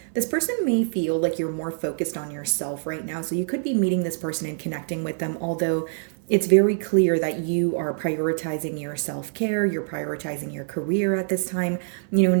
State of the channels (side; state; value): left; silent; 56 dB below the other